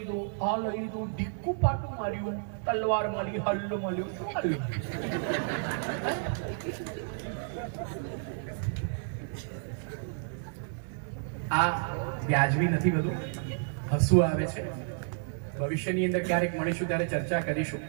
આ લઈ લીધું, ઢીક્કું પાટું માર્યું, તલવાર મળી, હલ્લો મળ્યો, શું મળ્યું? આ વ્યાજબી નથી બધું? હસવું આવે છે. ભવિષ્યની અંદર ક્યારેક મળીશું ત્યારે ચર્ચા કરીશું.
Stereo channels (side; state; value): left; silent; 57 dB below the other